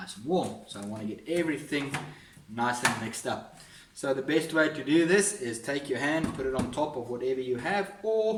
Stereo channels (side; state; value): both; identical; correlation 1.00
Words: and warm. So I want to get everything nice and mixed up. So the best way to do this is take your hand, put it on top of whatever you have,